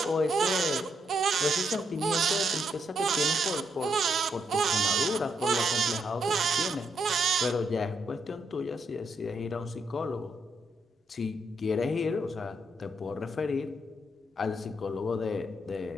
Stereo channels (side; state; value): both; normal; correlation 0.78